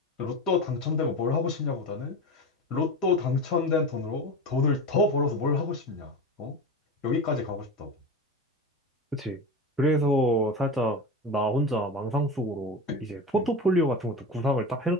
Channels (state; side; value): normal; both; correlation 0.26